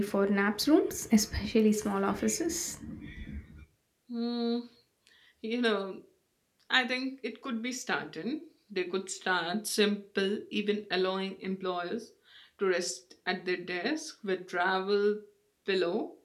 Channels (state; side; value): identical; both; correlation 1.00